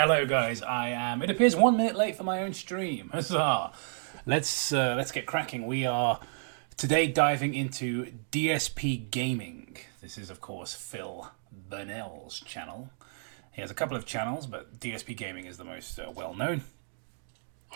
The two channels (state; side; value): silent; left; digital silence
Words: guys. I am. It appears 1 minute late for my own stream. Huzzah! Let's get cracking. We are today diving into DSP Gaming. This is, of course, Phil Burnell's channel. He has a couple of channels, but DSP Gaming is the most well known.